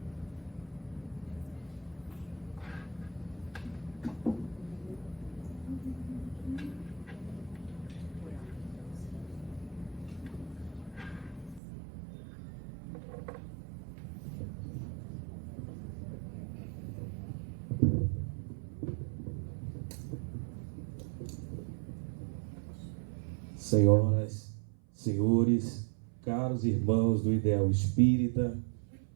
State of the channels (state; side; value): drops out; left; at 11.6 s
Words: Senhoras, senhores, caros irmãos do Ideal Espírita,